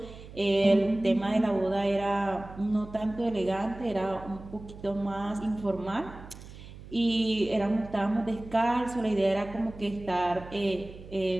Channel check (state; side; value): noise; right; hum, 16 dB below the sound